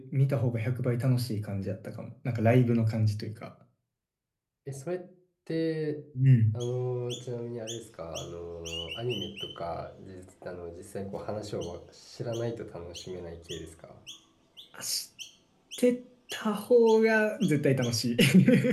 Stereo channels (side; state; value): both; identical; correlation 1.00